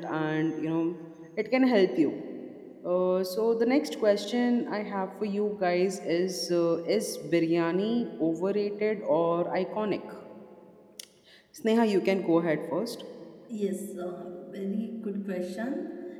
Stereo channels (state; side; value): identical; both; correlation 1.00